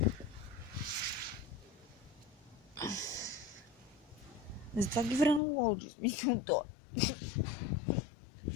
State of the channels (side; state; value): right; drops out; at 5.4 s